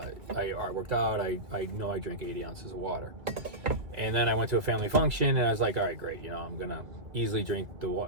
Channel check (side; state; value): left; late; 2.1 ms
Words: I worked out. I know I drank 80 ounces of water. And then I went to a family function, and I was like, all right, great. I'm going to easily drink the